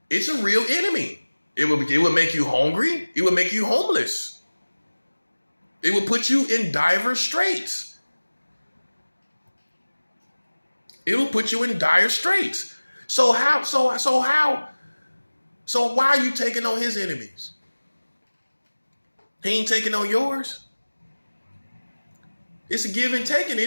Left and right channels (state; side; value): inverted; both; correlation -1.00